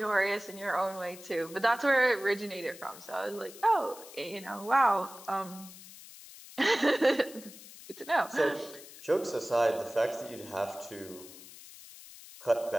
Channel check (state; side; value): noise; left; hiss, 17 dB below the sound